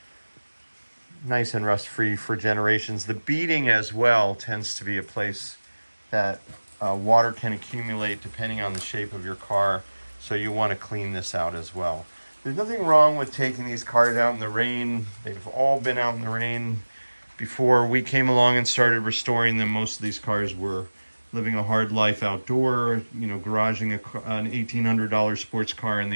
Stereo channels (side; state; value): both; inverted; correlation -1.00